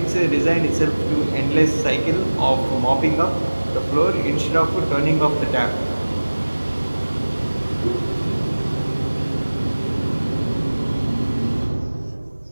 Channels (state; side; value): inverted; both; correlation -1.00